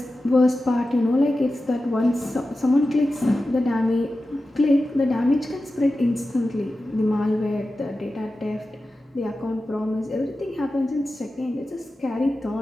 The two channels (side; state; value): both; normal; correlation 0.93